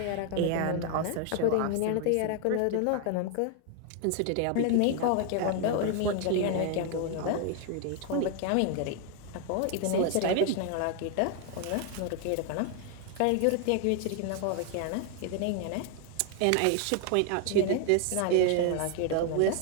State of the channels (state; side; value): different; both; correlation 0.00